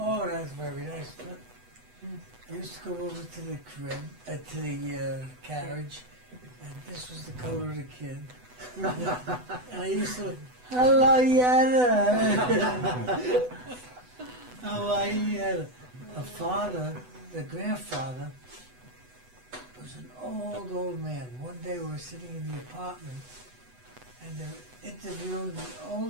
that's very nice. I used to go over to the crib, to the carriage, and this was the color of the kid. And I used to, hello, Yetta. How are you, Yetta? Her father, the grandfather, was an old man. One day we were sitting in the apartment, and they were interviewing the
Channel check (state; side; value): late; left; 8.0 ms